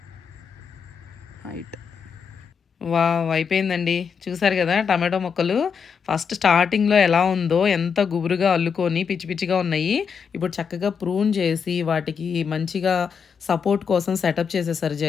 హైట్. వావ్, అయిపోయిందండి. చూసారు కదా టమాటో మొక్కలు ఫస్ట్ స్టార్టింగ్లో ఎలా ఉందో, ఎంత గుబురుగా అల్లుకొని పిచ్చి పిచ్చిగా ఉన్నాయి. ఇప్పుడు చక్కగా ప్రూన్ చేసి వాటికి మంచిగా సపోర్ట్ కోసం సెటప్ చేసేసారు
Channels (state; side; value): quieter; right; 6.4 dB